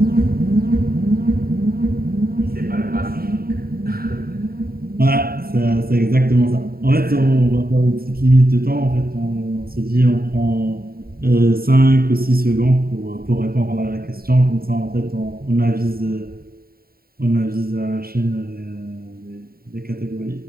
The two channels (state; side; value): late; left; 0.43 ms